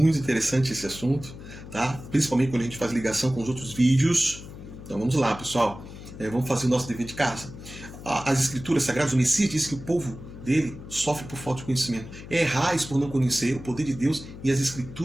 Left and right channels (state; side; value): noise; left; hum, 14 dB below the sound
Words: interessante esse assunto, tá? Principalmente quando a gente faz ligação com os outros vídeos. Então vamos lá, pessoal. Vamos fazer o nosso dever de casa. As escrituras sagradas, o Messias disse que o povo dele sofre por falta de conhecimento. Errais por não conhecer o poder de Deus e as